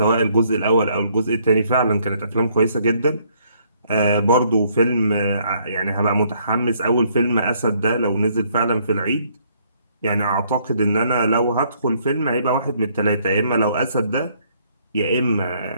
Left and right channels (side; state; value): both; inverted; correlation -0.67